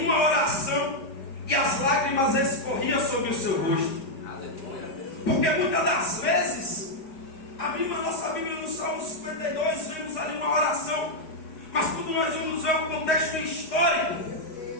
uma oração, e as lágrimas escorriam sobre o seu rosto. Porque muitas das vezes abrimos a nossa Bíblia no Salmo 52, vemos ali uma oração, mas quando nós vamos ver o contexto histórico,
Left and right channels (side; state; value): right; late; 5.0 ms